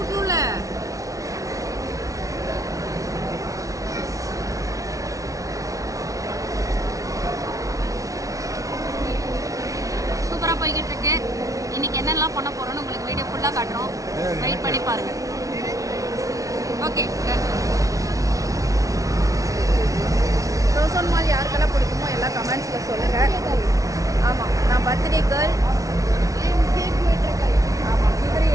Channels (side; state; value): left; late; 0.17 ms